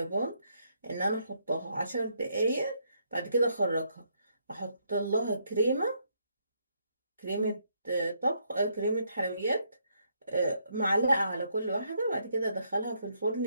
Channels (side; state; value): both; inverted; correlation -0.73